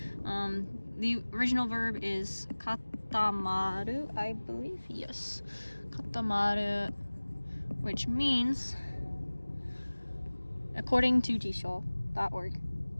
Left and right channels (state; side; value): inverted; both; correlation -1.00